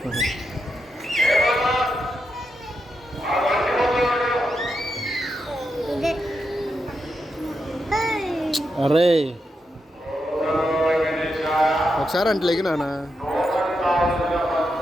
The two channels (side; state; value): both; normal; correlation 0.85